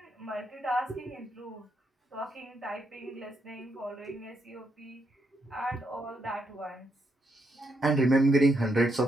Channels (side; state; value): both; normal; correlation 0.78